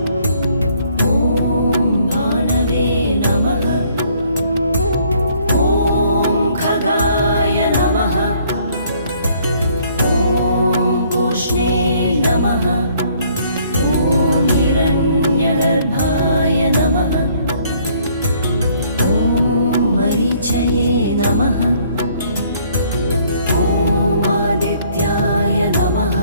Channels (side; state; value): both; inverted; correlation -0.63